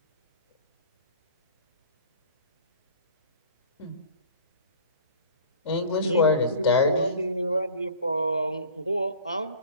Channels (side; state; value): both; inverted; correlation -0.44